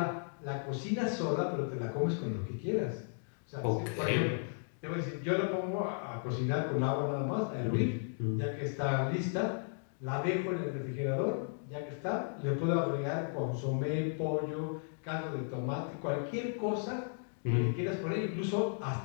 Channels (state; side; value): silent; right; digital silence